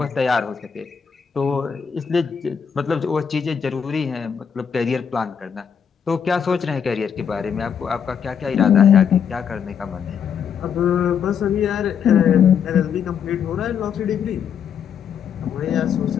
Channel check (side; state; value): right; quieter; 7.4 dB